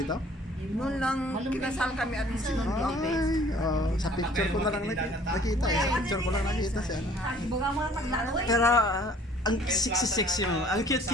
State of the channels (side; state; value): both; normal; correlation 0.54